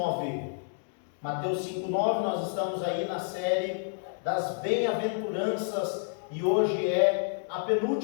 Mateus 5, 9, nós estamos aí na série das bem-aventuranças e hoje é a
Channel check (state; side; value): silent; right; digital silence